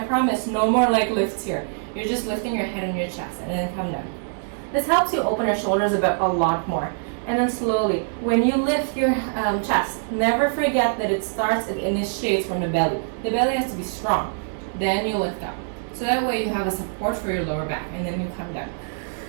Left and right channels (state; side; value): silent; left; 63 dB below the other